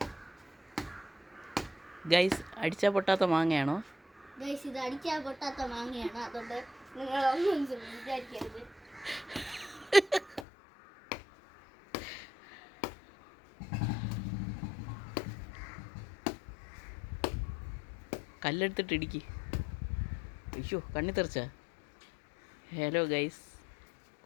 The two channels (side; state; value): right; drops out; at 10.5 s